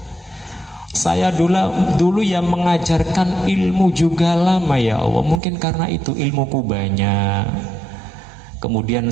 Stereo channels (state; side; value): drops out; left; at 5.4 s